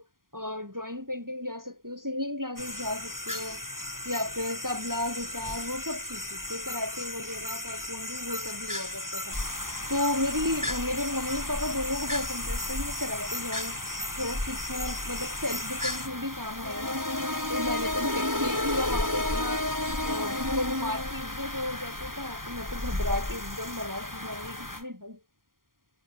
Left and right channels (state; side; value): late; left; 0.91 ms